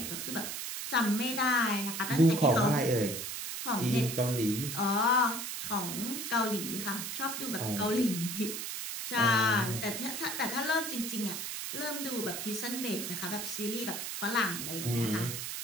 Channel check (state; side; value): noise; right; hiss, 5 dB below the sound